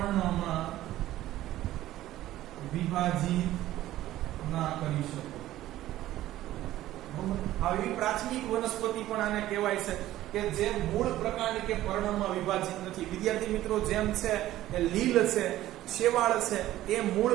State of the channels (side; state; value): left; quieter; 14.5 dB